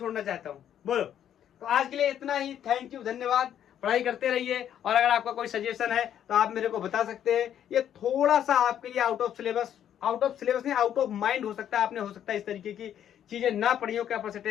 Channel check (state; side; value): quieter; right; 10.1 dB